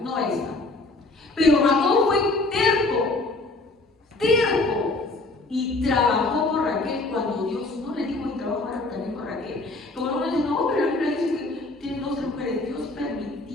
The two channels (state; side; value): quieter; right; 3.1 dB